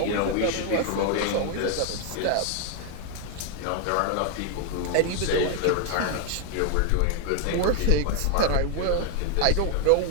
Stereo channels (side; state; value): both; different; correlation 0.01